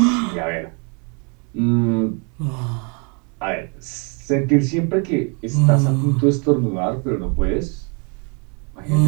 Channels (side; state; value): left; quieter; 35.7 dB